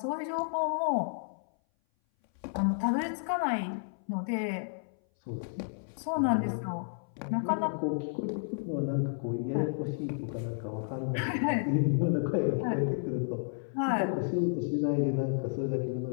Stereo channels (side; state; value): right; silent; 57 dB below the other